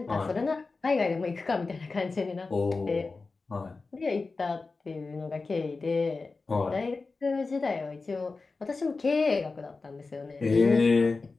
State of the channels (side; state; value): right; quieter; 4.0 dB